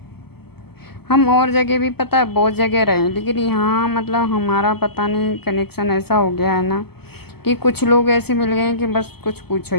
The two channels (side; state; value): right; late; 0.96 ms